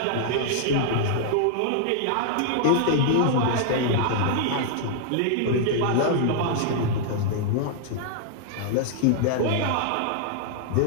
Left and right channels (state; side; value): different; both; correlation -0.01